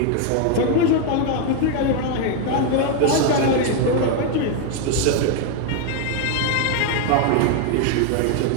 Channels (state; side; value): different; both; correlation 0.00